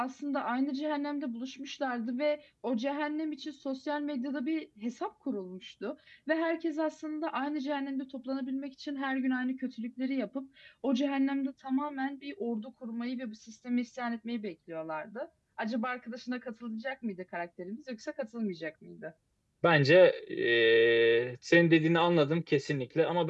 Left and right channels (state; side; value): identical; both; correlation 1.00